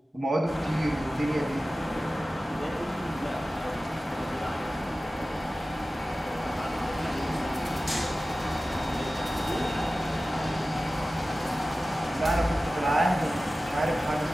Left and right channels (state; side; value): normal; both; correlation 0.96